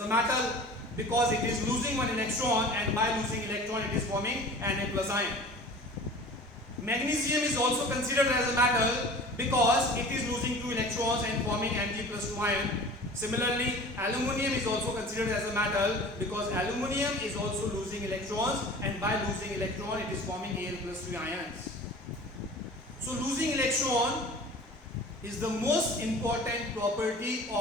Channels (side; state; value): both; normal; correlation 0.41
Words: metal because it is losing one electron, and by losing electron it is forming Na plus ion. Magnesium is also considered as a metal because it is losing 2 electrons and forming Mg plus 2 ion. Similarly, aluminium is also considered as a metal because aluminium is also losing electrons, and by losing electron it is forming Al plus 3 ions. So losing electron is the most important property